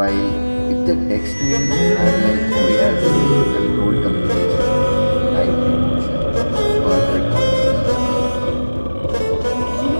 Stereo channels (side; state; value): both; inverted; correlation -1.00